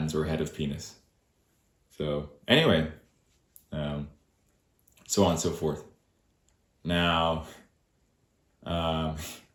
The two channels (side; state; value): both; identical; correlation 1.00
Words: or head of penis. So anyway, so on and so forth. Now,